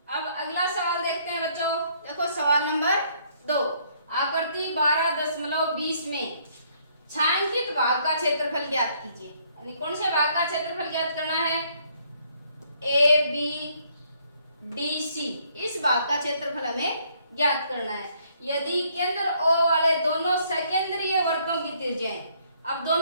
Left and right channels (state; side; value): inverted; both; correlation -0.66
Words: अब अगला सवाल देखते हैं बच्चों। देखो सवाल नंबर 2, आकृति 12.20 में छायांकित भाग का क्षेत्रफल ज्ञात कीजिए। यानी कौन से भाग का क्षेत्रफल ज्ञात करना है? ए बी डी सी, इस भाग का क्षेत्रफल हमें ज्ञात करना है। यदि केंद्र O वाले दोनों सकेंद्रीय वृत्तों की त्रिज्याएं, अब